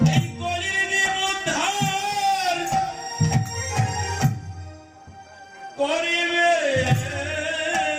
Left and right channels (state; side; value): identical; both; correlation 1.00